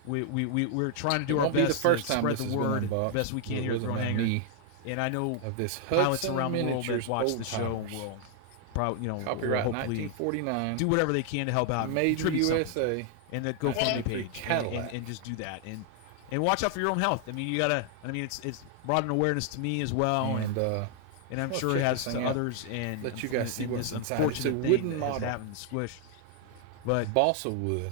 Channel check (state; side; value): different; both; correlation 0.00